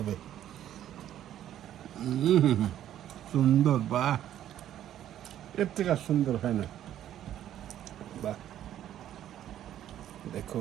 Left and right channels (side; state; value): left; quieter; 11.5 dB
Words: সুন্দর, বাহ, এর থেকে আর সুন্দর হয় না, বাহ।